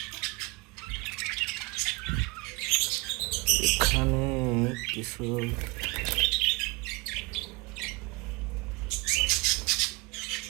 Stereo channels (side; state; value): left; quieter; 25.8 dB